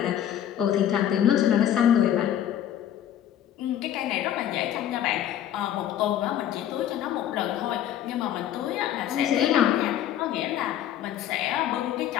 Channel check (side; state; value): right; quieter; 10.9 dB